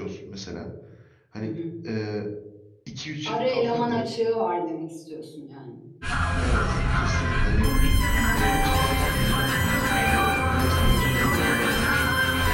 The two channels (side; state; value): both; identical; correlation 1.00